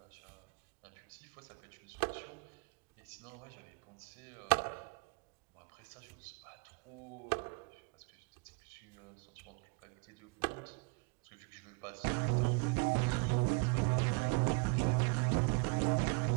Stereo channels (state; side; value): quieter; left; 31.1 dB